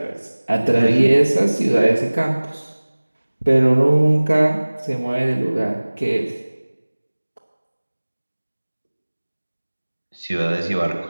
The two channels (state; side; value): inverted; both; correlation -1.00